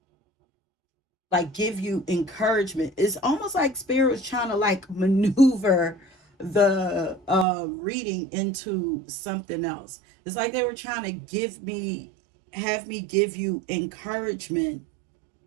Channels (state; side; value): drops out; left; at 7.5 s